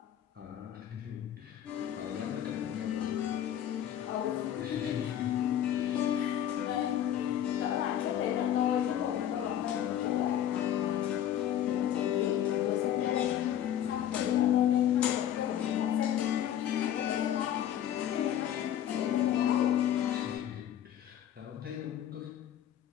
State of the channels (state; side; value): quieter; right; 10.7 dB